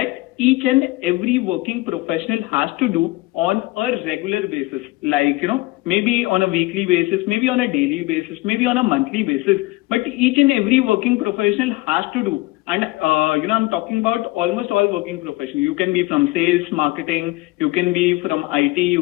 each and every working professional has to do on a regular basis? Like, maybe on a weekly basis, maybe on a daily basis, maybe on a monthly basis, but each and every working professional has to do. And, I'm talking about almost all working professionals. You can be from sales, marketing, you can be from IT,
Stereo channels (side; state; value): right; quieter; 20.6 dB